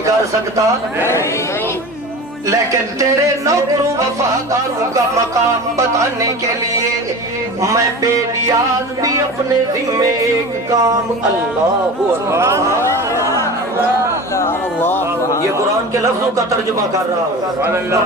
کر سکتا نہیں، لیکن تیرے نوکروں وفاداروں کا مقام بتانے کے لیے میں بے نیاز بھی اپنے ذمے ایک کام اللہ یہ قرآن کے لفظوں کا ترجمہ کر رہا ہوں،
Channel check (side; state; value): both; normal; correlation 0.33